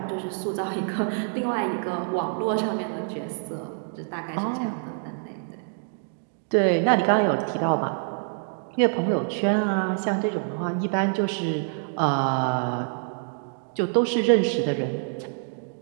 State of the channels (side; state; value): left; silent; digital silence